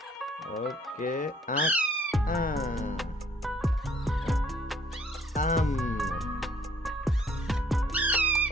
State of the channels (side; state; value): both; normal; correlation 0.62